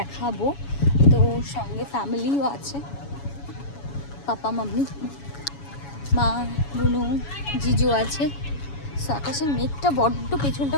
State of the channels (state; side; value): late; right; 7.1 ms